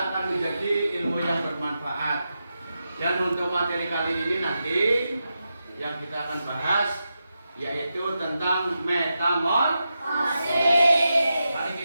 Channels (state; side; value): inverted; both; correlation -0.89